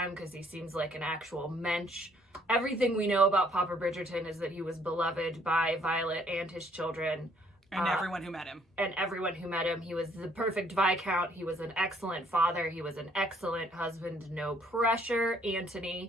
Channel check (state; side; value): normal; both; correlation 0.64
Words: because he seems like an actual mensch. Everything we know about Papa Bridgerton is that he was beloved by Violet and his children. And everyone who met him. He was the perfect Viscount. He was an excellent father. He was an excellent husband. No pressure,